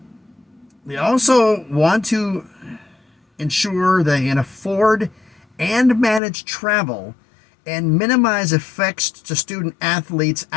They also want to ensure they can afford and manage travel and minimize effects to student athletes'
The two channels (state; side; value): drops out; right; at 6.2 s